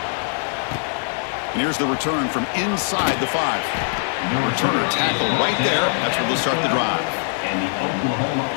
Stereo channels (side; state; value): right; silent; 64 dB below the other